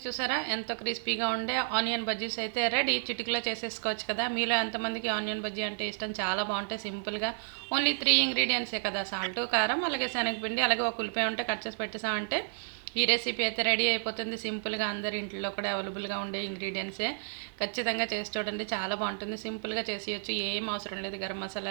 చూసారా ఎంతో క్రిస్పీగా ఉండే ఆనియన్ బజ్జీస్ అయితే రెడీ. చిటికలో చేసేసుకోవచ్చు కదా. మీలో ఎంతమందికి ఆనియన్ బజ్జీ అంటే ఇష్టం, చాలా బాగుంటాయి సింపుల్గా. ఓన్లీ 3 ఇంగ్రీడియంట్సే కదా, సాల్ట్, కారం, అలాగే శనగపిండి, అలాగే ఒక ఉల్లిపాయ ఉంటే కట్ చేసి పెట్టేసామంటే ఈ రెసిపీ అయితే రెడీ అయిపోతుంది. సింపుల్గా అందరి ఇంట్లో కూడా అవైలబుల్గా ఉండే ఇంగ్రీడియంట్సే. ఖచ్చితంగా చేసి చూడండి, చాలా బాగుంటుంది. సింపుల్గా చేసేయచ్చు, ఏం అవసరం లేదు. గరం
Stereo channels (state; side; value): silent; left; digital silence